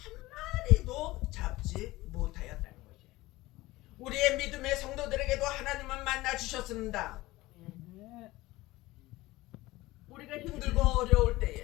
마리도 잡지 못하였다는 거지. 우리의 믿음의 성도들에게도 하나님은 만나 주셨습니다. 우리가 힘들고 어려울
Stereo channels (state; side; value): quieter; right; 18.9 dB